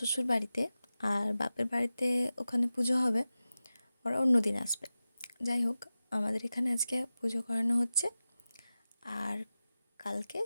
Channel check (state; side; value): inverted; both; correlation -0.94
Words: বাড়িতে, আর বাপের বাড়িতে ওখানে পুজো হবে, ওরা অন্য দিন আসবে। যাই হোক, আমাদের এখানে আজকে পুজো করানো হচ্ছে, আর কালকে